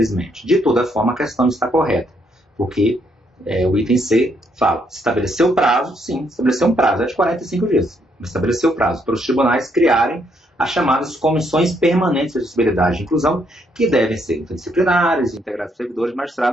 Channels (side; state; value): both; normal; correlation 0.73